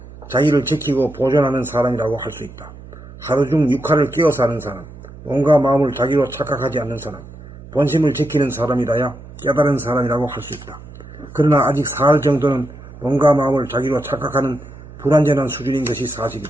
자기를 지키고 보존하는 사람이라고 할 수 있다. 하루 중 6할을 깨어 사는 사람, 몸과 마음을 자기로 착각하지 않는 사람, 본심을 지키는 사람이라야 깨달은 사람이라고 할 수 있다. 그러나 아직 4할 정도는 몸과 마음을 자기로 착각하는 불완전한 수준인 것이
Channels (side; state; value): right; noise; hum, 17 dB below the sound